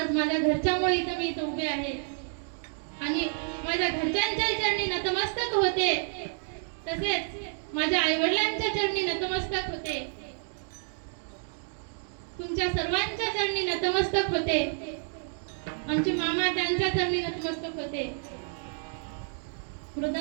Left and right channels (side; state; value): left; silent; digital silence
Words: माझ्या घरच्यामुळे इथं मी इथं उभे आहे आणि माझ्या घरच्यांच्या चरणी नतमस्तक होते. तसेच माझ्या आईवडिलांच्या चरणी नतमस्तक होते. तुमच्या सर्वांच्या चरणी नतमस्तक होते. आमचे मामा त्यांच्या चरणी नतमस्तक होते.